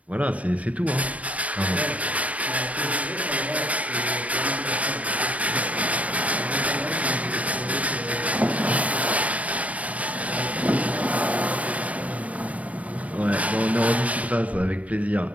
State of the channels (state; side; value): late; left; 0.067 ms